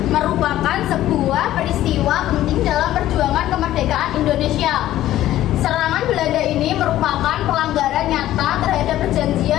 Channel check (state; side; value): quieter; right; 13.8 dB